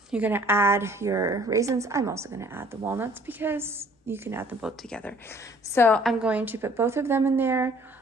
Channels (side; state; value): both; normal; correlation 0.56